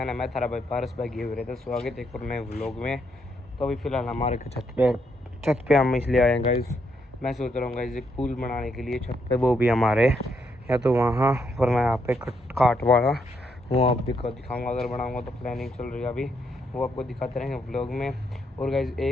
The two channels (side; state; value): both; normal; correlation 0.76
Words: ने। मैं थारा भाई पारस भाई गए हुए थे। स्वागत है एक और नए व्लॉग में। तो अभी फ़िलहाल हमारे छत पे हम इसलिए आए हैं गाइस। मैं सोच रहा हूँ गाइस एक पूल बनाने के लिए छत पे, वो भी हमारे या तो वहाँ पर मैं यहाँ पे काट वाला वो आप दिखाऊँगा। अगर बनाऊँगा तो प्लानिंग चल रही है अभी, वो आपको दिखाते रहेंगे व्लॉग में। और गाइस